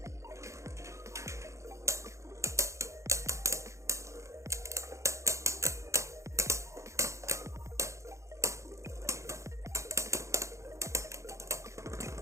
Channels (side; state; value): left; late; 0.14 ms